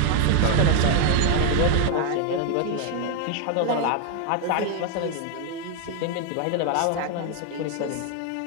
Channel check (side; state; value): both; different; correlation 0.00